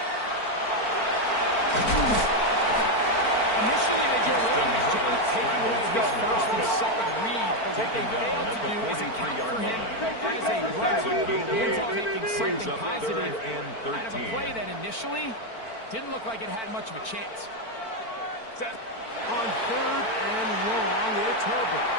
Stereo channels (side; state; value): right; late; 4.5 ms